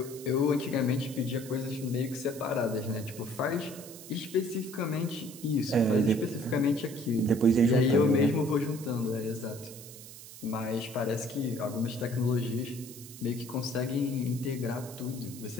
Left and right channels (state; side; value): noise; right; hiss, 15 dB below the sound